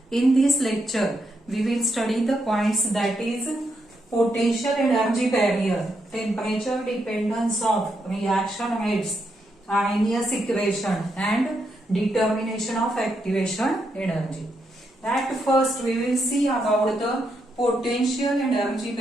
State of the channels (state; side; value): normal; both; correlation 0.80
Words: In this lecture, we will study the points that is potential energy barrier, temperature dependence of reaction rates, Arrhenius equation and determination of activation energy. At first, we will see about the potential energy